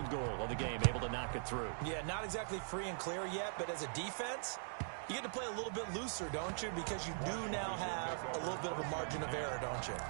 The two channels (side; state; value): left; silent; digital silence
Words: goal of the game, able to knock it through. Yeah, not exactly free and clear yet, but as a defense, you get to play a little bit looser, don't you? Because you do now have a little bit of a margin of error, don't you?